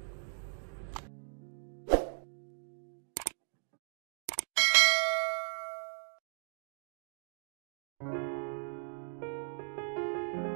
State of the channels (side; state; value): left; silent; digital silence